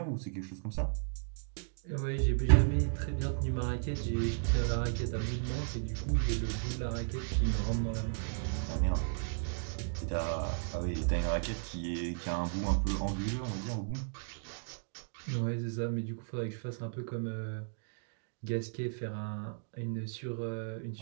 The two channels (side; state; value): left; silent; digital silence